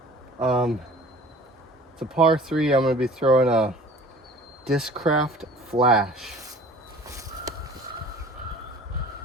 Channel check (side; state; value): both; normal; correlation 0.46